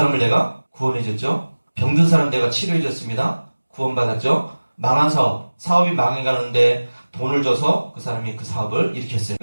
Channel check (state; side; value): inverted; both; correlation -1.00